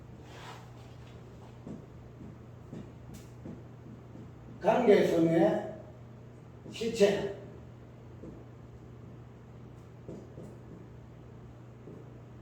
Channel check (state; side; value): identical; both; correlation 1.00